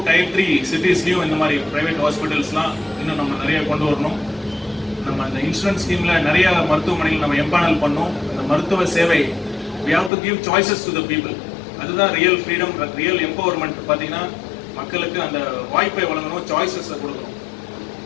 Tier 3 சிட்டிஸ்லையும் இந்த மாதிரி ப்ரைவேட் ஹாஸ்பிட்டல்ஸ்லாம் இன்னும் நம்ம நிறைய கொண்டு வரணும். நம்ம அந்த இன்சூரன்ஸ் ஸ்கீமில் நிறைய மருத்துவமனைகள் நம்ம எம்பானல் பண்ணோம். அந்த மருத்துவ சேவை we have to give choices to the people. அதுதான் ரியல் ஃப்ரீடம், ரியல் எம்பவர்மெண்ட். பார்த்தீங்கன்னா மக்களுக்கு அந்த வாய்ப்பை வழங்கணும், சாய்ஸஸை கொடுக்கணும்.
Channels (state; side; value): drops out; right; at 10.1 s